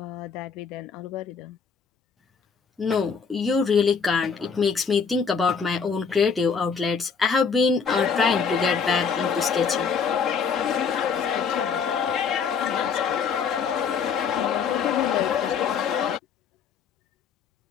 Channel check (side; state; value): right; quieter; 6.0 dB